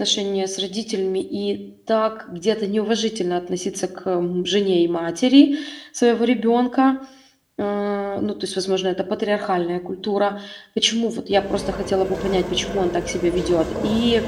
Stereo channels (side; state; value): both; identical; correlation 1.00